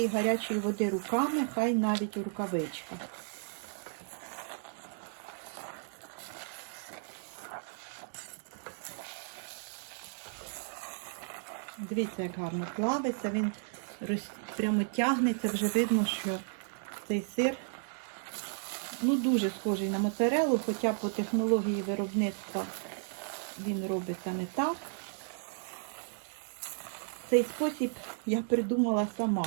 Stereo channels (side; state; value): left; silent; digital silence